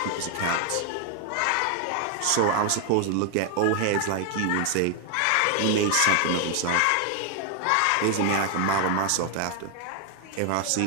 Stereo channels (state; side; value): different; both; correlation 0.00